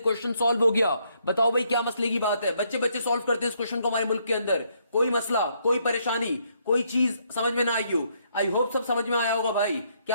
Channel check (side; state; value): both; inverted; correlation -0.72